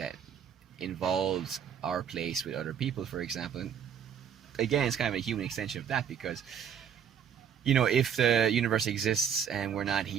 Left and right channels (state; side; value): quieter; left; 8.2 dB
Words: involves our place with other people, for example. And again, it's kind of a human extension of that, because, if the universe exists and we're not